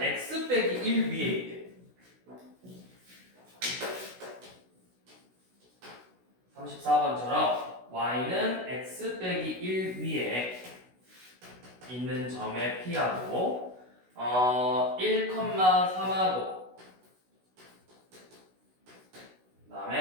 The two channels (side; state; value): left; late; 16 ms